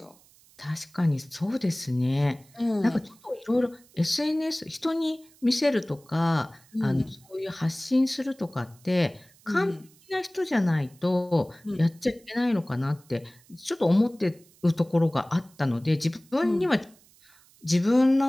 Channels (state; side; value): noise; right; hiss, 28 dB below the sound